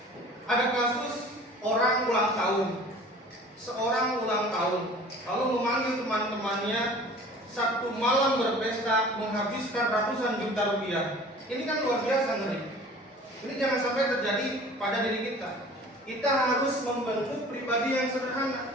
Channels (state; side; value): normal; both; correlation 0.45